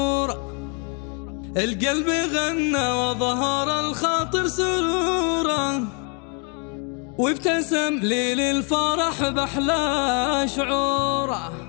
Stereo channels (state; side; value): quieter; right; 36.7 dB